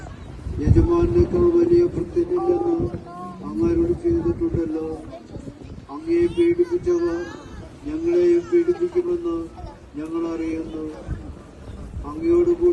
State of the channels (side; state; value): both; identical; correlation 1.00